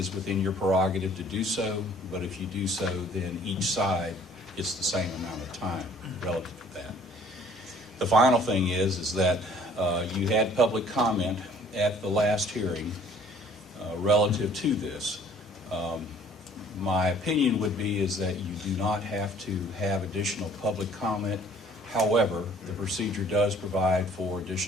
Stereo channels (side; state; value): both; normal; correlation 0.55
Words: within your prerogative to do so, but if you do so, then each side gets the same amount of time relative to that. The final thing is that you had public comment at the last hearing relative to this. My opinion would be is that you do not have to have additional public comment. However, the procedure does provide for